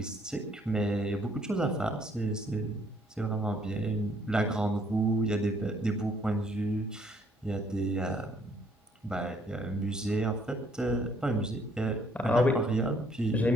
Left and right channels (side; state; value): both; normal; correlation 0.65